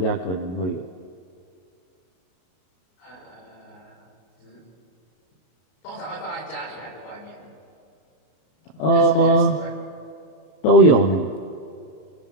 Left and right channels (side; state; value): right; late; 33 ms